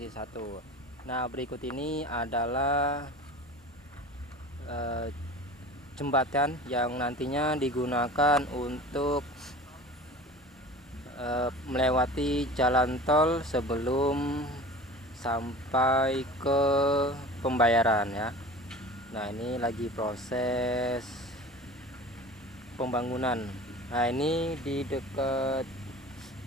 1. Nah, berikut ini adalah jembatan yang nantinya digunakan untuk melewati jalan tol sebelum sampai ke pembayaran ya. Nah, ini lagi proses pembangunan. Nah, ini di dekat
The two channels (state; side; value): normal; both; correlation 0.38